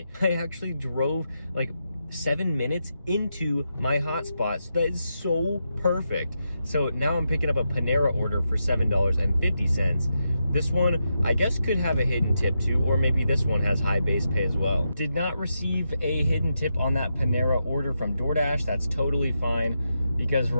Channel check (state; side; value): inverted; both; correlation -0.85